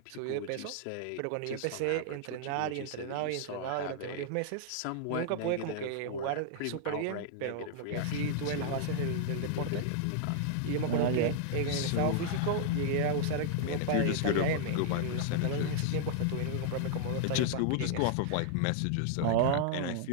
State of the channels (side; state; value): both; different; correlation 0.00